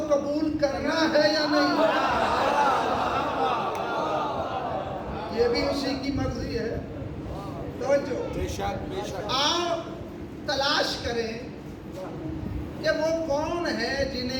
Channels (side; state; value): both; identical; correlation 1.00